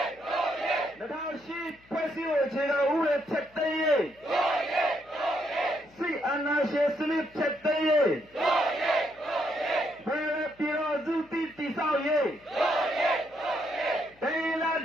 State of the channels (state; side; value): noise; left; hum, 29 dB below the sound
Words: 2008ဖွဲ့စည်းပုံအခြေခံဥပဒေဖြတ်သိမ်းရေးစစ်အာဏာရှင်စနစ်ဖြတ်သိမ်းရေးဘယ်လိုပြည်တော်စုတည်ဆောက်ရေးတိုင်းရင်းသား